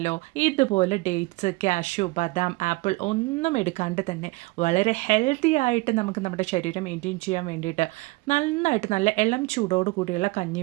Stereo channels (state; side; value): quieter; left; 23.0 dB